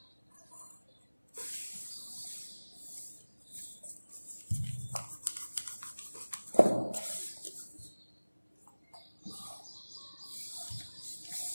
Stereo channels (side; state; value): both; inverted; correlation -1.00